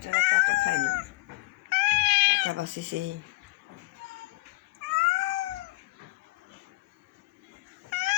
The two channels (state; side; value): quieter; right; 23.0 dB